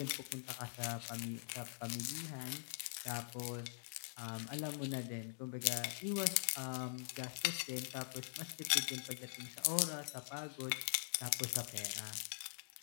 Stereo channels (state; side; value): silent; right; digital silence